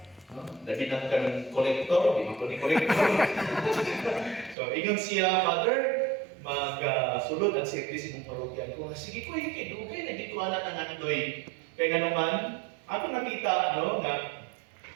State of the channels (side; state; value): left; drops out; at 4.5 s